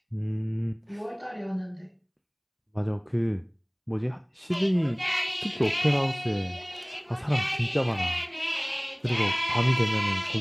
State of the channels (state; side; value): identical; both; correlation 1.00